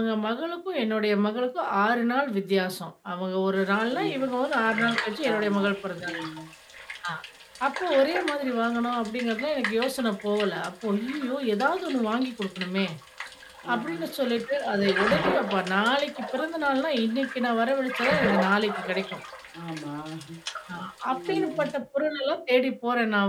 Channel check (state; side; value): identical; both; correlation 1.00